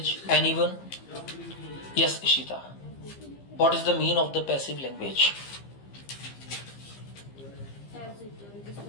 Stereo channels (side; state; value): right; late; 15 ms